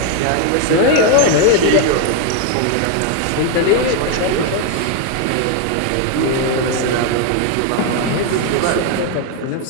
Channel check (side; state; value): both; different; correlation 0.00